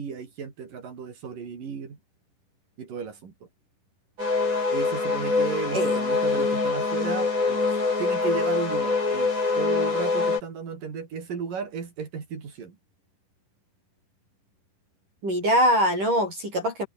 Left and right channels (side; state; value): left; late; 10 ms